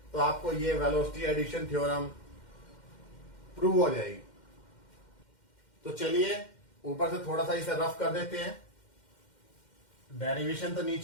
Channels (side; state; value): right; late; 2.1 ms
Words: तो आपको ये वेलोसिटी एडिशन थ्योरम प्रूव हो जाएगी. तो चलिए ऊपर से थोड़ा सा इसे रफ कर देते हैं. डेरिवेशन तो